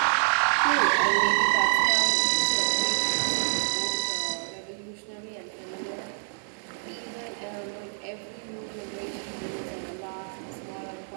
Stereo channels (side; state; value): left; silent; digital silence